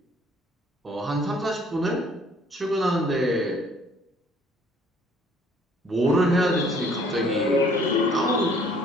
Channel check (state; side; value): normal; both; correlation 0.59